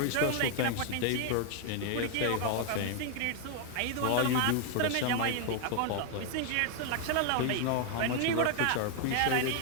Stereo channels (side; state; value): both; different; correlation 0.00